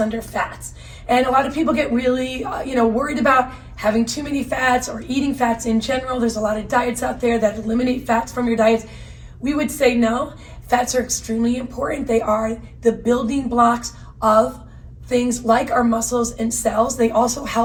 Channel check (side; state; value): both; identical; correlation 1.00